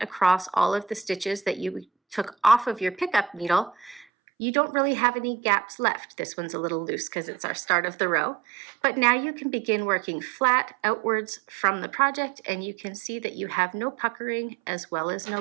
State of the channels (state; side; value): drops out; left; at 4.0 s